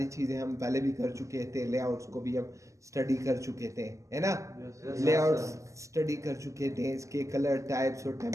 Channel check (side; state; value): left; late; 0.15 ms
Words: चीज़ें हम पहले भी कर चुके थे, लेआउट्स को भी हम स्टडी कर चुके थे, है ना। लेआउट्स स्टडी कर चुके थे, इसके कलर टाइप्स और